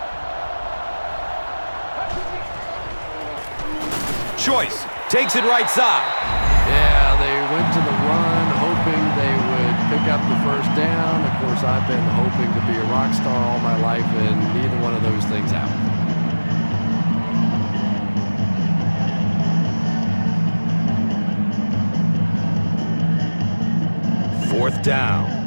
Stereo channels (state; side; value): inverted; both; correlation -1.00